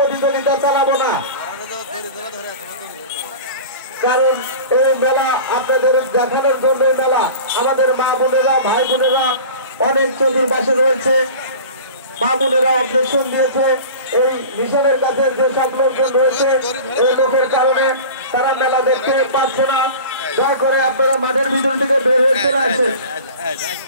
চালাবো না। কারণ এই মেলা আপনাদের দেখানোর জন্য এই মেলা আমাদের মা বোনেরা ভাই বোনেরা অনেক চতুর্পাশে রয়েছে। মা বোনেরা অবজেকশন দিয়েছে এই মিশনের কাছে যে সব লোকজন রয়েছে এই লোকের কারণে তারা মেলা দেখতে পাচ্ছে না। দয়া করে আপনারা মাঠের ভিতর থেকে বের হয়ে চলে আসেন।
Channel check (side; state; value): both; inverted; correlation -0.37